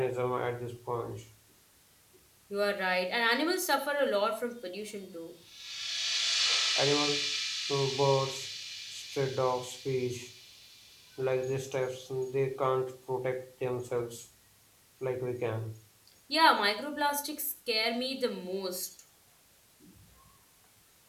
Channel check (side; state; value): both; identical; correlation 1.00